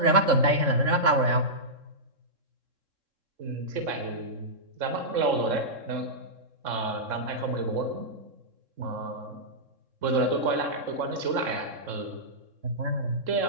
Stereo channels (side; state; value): left; late; 3.7 ms